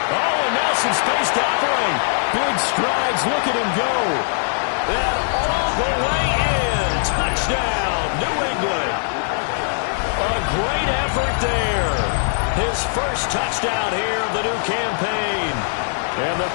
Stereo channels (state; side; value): silent; right; 65 dB below the other